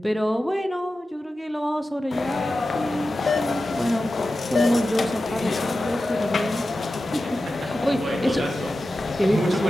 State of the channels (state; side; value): normal; both; correlation 0.93